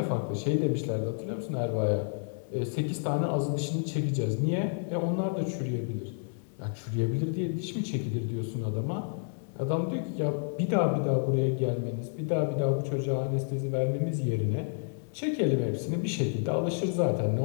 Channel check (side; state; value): right; silent; digital silence